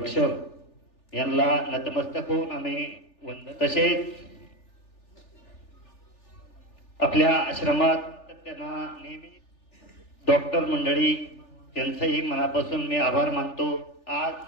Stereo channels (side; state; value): right; late; 3.4 ms